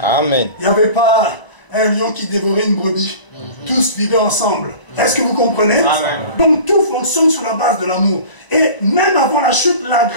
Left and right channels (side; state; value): right; late; 1.0 ms